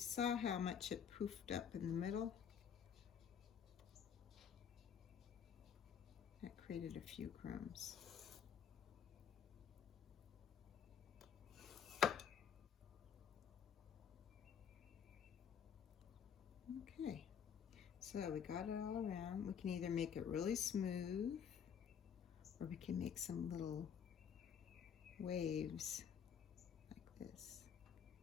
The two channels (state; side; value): quieter; right; 7.8 dB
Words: how much it poofed up in the middle, that created a few crumbs. Okay, so we got it all around. We can either make it really smooth or we can make some little waves like this,